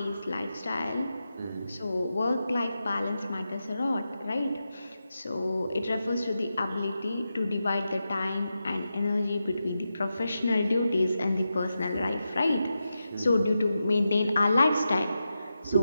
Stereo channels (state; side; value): inverted; both; correlation -0.89